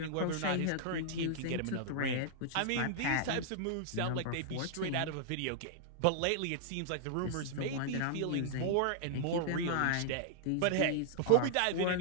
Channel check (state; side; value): different; both; correlation -0.01